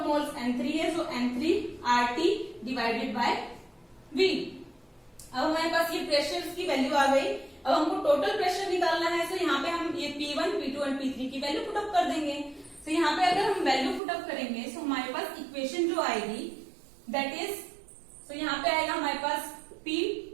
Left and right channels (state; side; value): drops out; left; at 14.0 s